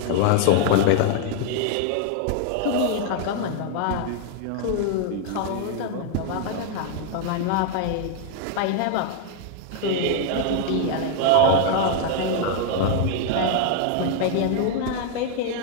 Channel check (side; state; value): both; different; correlation 0.00